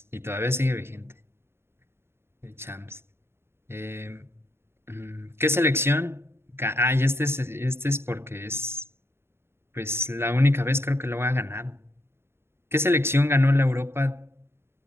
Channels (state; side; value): late; left; 0.12 ms